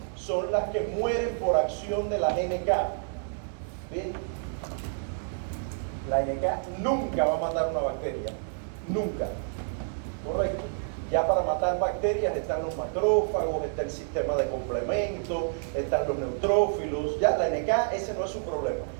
son las que mueren por acción de la NK. ¿Bien? La NK nunca va a matar una bacteria. Nunca. ¿Correcto? Ya para matar bacterias están los macrófagos, está el sistema de complemento, están los neutrófilos. Ya la NK, ese no es su problema.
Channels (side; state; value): left; silent; digital silence